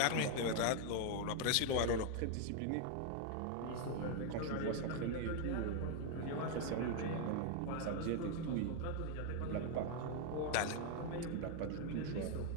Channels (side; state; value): both; different; correlation 0.00